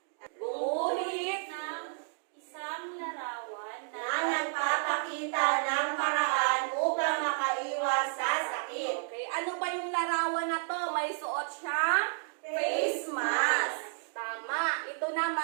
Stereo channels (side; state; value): left; silent; digital silence